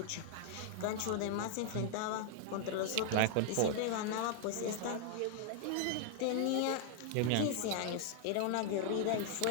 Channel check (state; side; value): different; both; correlation 0.00